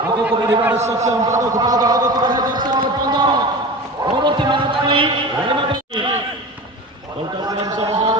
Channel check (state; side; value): normal; both; correlation 0.32